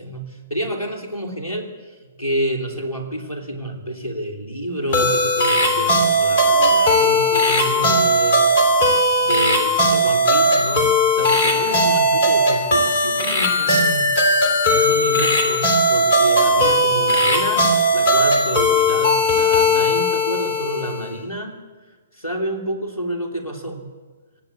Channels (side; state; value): both; inverted; correlation -0.36